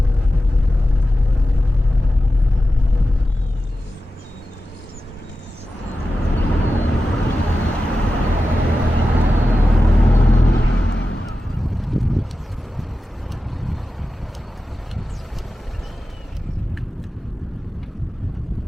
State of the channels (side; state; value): both; normal; correlation 0.93